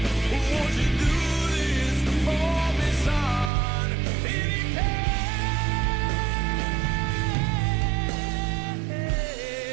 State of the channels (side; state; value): left; drops out; at 3.5 s